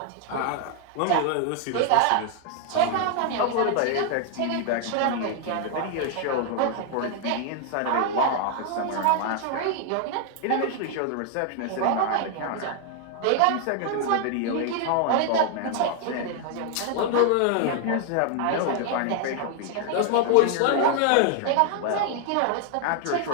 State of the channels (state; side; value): different; both; correlation 0.00